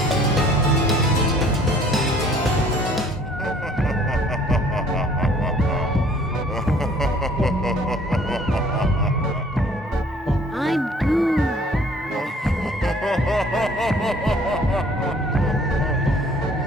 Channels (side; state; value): both; normal; correlation 0.56